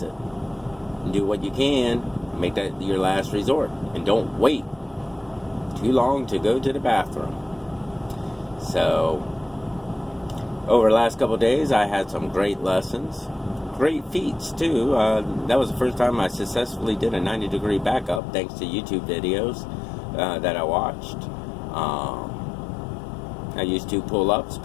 Do what you can. Make that your last resort, and don't wait too long to go to the bathroom. So over the last couple of days, I had some great lessons, great feats too. That was the first time I successfully did a 90-degree backup, thanks to YouTube videos that I watched. I used 2 pull-ups,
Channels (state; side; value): drops out; right; at 18.2 s